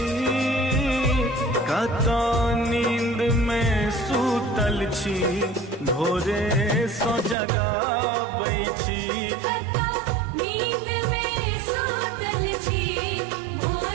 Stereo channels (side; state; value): left; drops out; at 7.4 s